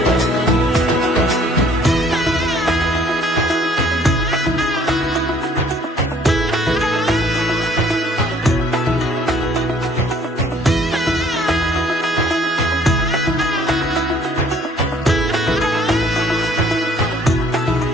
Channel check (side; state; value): both; normal; correlation 0.58